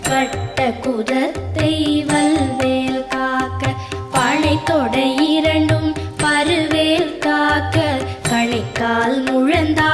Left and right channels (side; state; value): both; identical; correlation 1.00